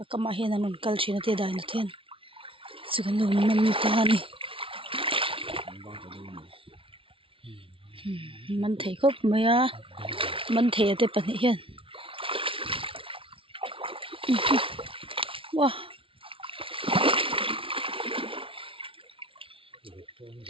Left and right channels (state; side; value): late; left; 0.26 ms